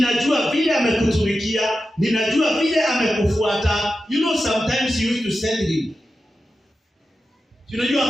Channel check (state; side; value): normal; both; correlation 0.91